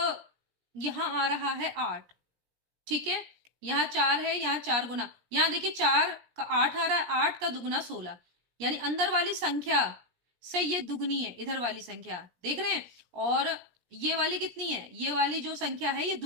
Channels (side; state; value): left; late; 17 ms